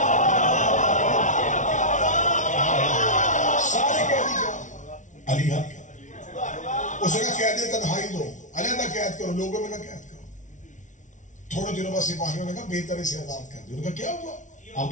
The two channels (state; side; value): late; right; 0.37 ms